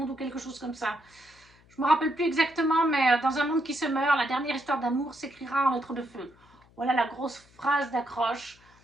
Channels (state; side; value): noise; left; hum, 29 dB below the sound